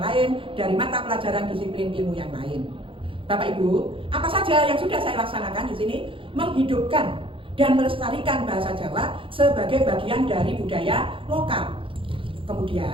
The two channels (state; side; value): late; left; 0.25 ms